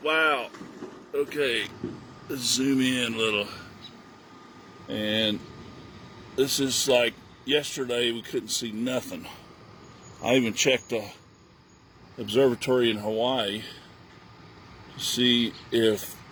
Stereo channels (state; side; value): identical; both; correlation 1.00